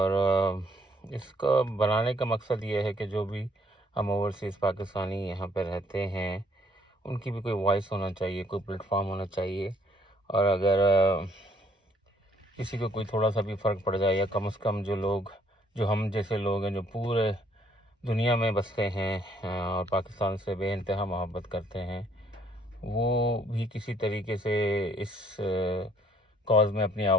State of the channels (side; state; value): both; normal; correlation 0.65